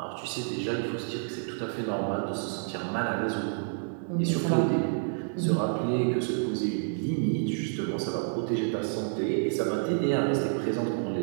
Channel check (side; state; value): left; silent; digital silence